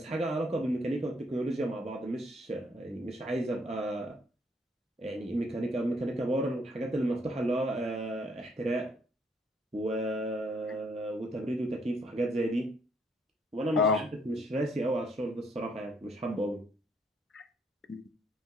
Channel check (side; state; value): both; normal; correlation 0.69